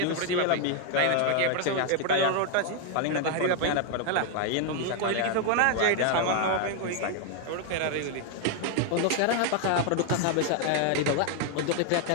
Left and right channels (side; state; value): both; different; correlation 0.00